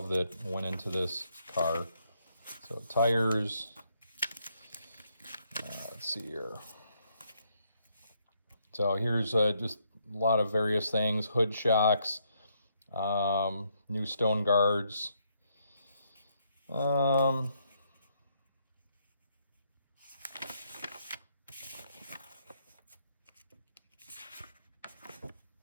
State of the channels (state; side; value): inverted; both; correlation -0.74